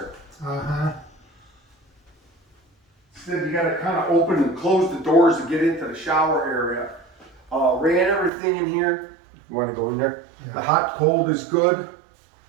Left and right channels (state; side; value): drops out; left; at 8.3 s